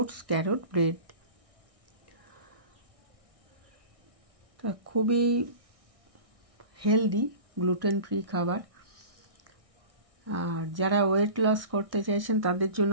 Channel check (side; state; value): left; late; 1.6 ms